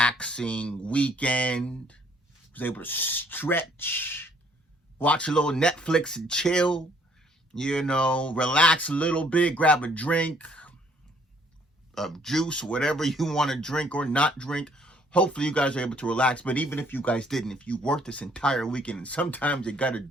weekend. Was able to stretch, watch a little Netflix and chill. Relax a little bit, grab a drink of juice, whatever you want to drink or not drink. Hopefully you guys are able to relax. But even if you guys didn't, if you worked this entire weekend, and sometimes you got to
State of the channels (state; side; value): normal; both; correlation 0.62